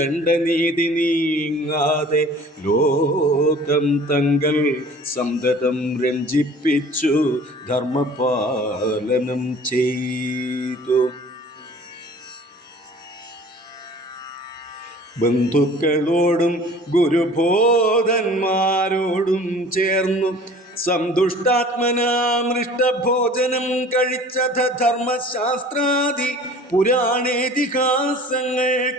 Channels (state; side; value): normal; both; correlation 0.46